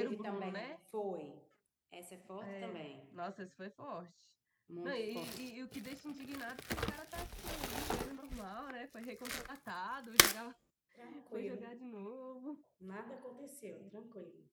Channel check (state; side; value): identical; both; correlation 1.00